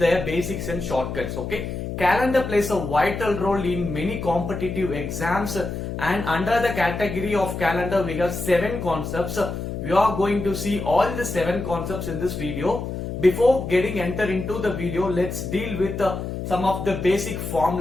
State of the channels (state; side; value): noise; left; hum, 5 dB below the sound